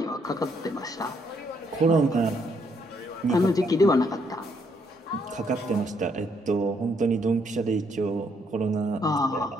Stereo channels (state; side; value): normal; both; correlation 0.72